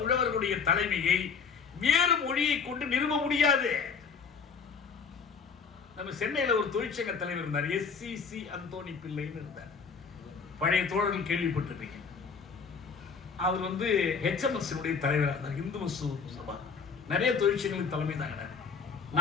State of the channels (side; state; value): right; quieter; 5.7 dB